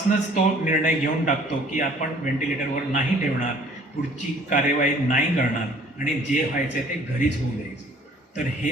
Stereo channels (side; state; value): both; normal; correlation 0.55